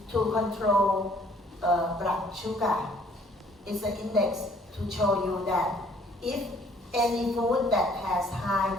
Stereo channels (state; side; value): normal; both; correlation 0.60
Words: to control blood sugar it's an index to show you that if any food that has high